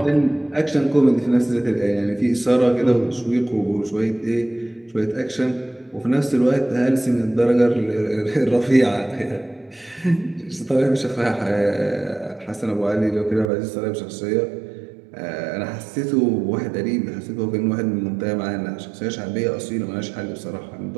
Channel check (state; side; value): drops out; left; at 13.5 s